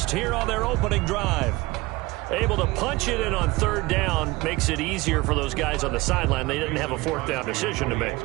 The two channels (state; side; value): quieter; left; 21.6 dB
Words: here on their opening drive. able to punch it in on third down makes it easier for those guys on the sideline. They didn't have a fourth down decision to make.